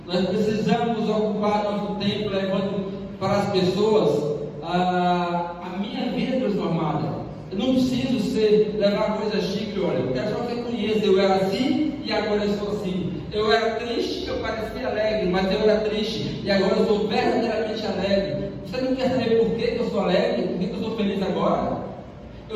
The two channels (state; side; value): identical; both; correlation 1.00